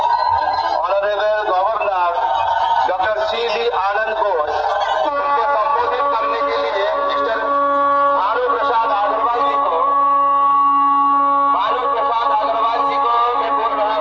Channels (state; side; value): noise; left; hum, 29 dB below the sound